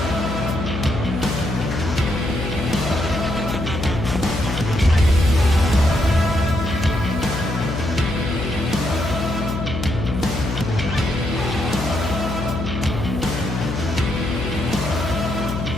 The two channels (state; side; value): noise; left; hum, 4 dB below the sound